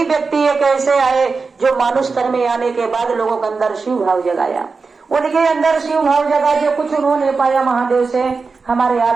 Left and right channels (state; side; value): quieter; left; 4.5 dB